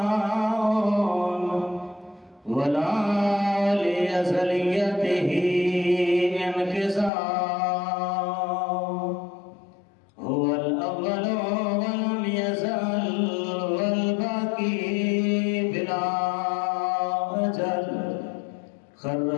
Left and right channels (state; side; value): drops out; right; at 7.1 s